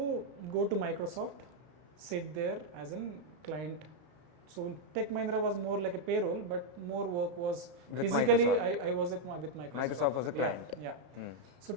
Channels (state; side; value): late; left; 33 ms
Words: go to Microsoft, sit there as a client. So Tech Mahindra was more like a payroll, but more work was with physically. Microsoft. I was with Microsoft. Microsoft was a client. Yeah. So